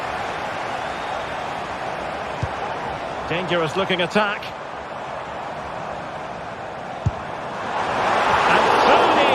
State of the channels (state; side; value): identical; both; correlation 1.00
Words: Dangerous looking attack. And so